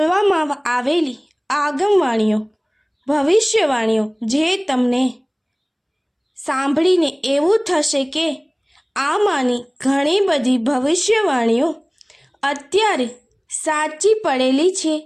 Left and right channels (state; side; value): identical; both; correlation 1.00